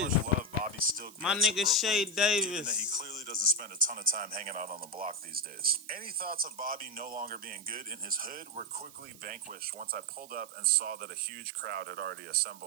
love Bobby still gets. My nigga Shay Davis. Given that he clearly doesn't spend a ton of time hanging out on the block these days. Any thoughts of Bobby no longer being good in his hood were quickly vanquished once I pulled up and saw that a huge crowd had already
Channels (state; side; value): noise; right; hiss, 20 dB below the sound